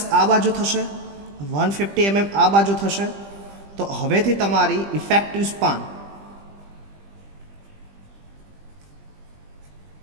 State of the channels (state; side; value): late; left; 20 ms